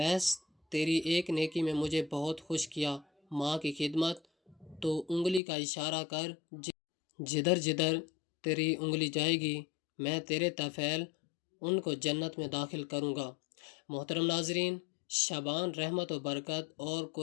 تیری ایک نیکی میں مجھے بہت خوش کیا، ماں کی خدمت، تو انگلی کا اشارہ کر، جدھر جدھر تیری انگلی جائے گی میں تیرے طفیل ان کو جنت میں داخل کروں گا۔ محترم ناظرین، شعبان رحمت و برکت اور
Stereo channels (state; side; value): drops out; right; at 5.4 s